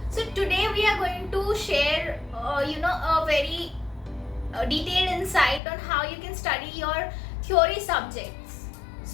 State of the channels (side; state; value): right; drops out; at 5.6 s